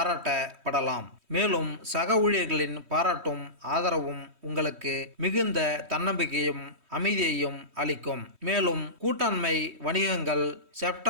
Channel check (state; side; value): late; left; 3.1 ms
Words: மேலும் சக ஊழியர்களின் பாராட்டும் ஆதரவும் உங்களுக்கு மிகுந்த தன்னம்பிக்கையும் அமைதியையும் அளிக்கும். மேலும் கூட்டாண்மை வணிகங்கள்